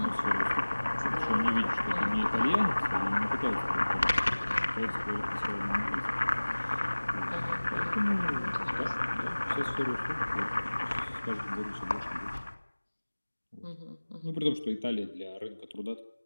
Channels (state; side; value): inverted; both; correlation -1.00